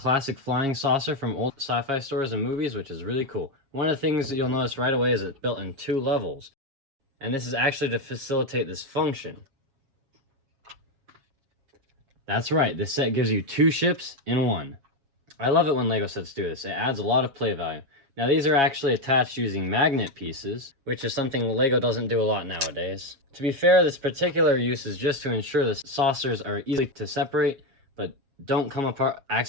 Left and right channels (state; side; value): late; left; 7.3 ms